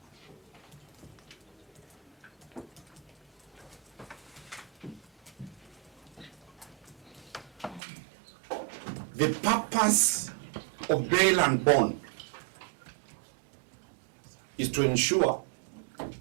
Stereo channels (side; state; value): left; drops out; at 7.8 s